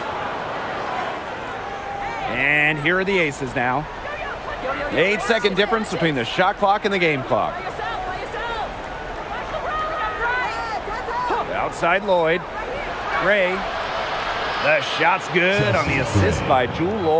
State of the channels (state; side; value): identical; both; correlation 1.00